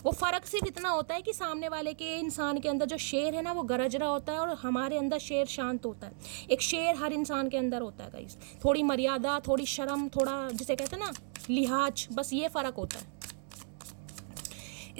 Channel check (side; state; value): left; silent; 55 dB below the other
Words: वो फ़र्क सिर्फ इतना होता है कि सामने वाले के इंसान के अंदर जो शेर है ना वो गरज रहा होता है, और हमारे अंदर शेर शांत होता है। एक शेर हर इंसान के अंदर होता है गाइस, थोड़ी मर्यादा, थोड़ी शर्म, थोड़ा जिसे कहते हैं ना लिहाज, बस ये फ़र्क होता है।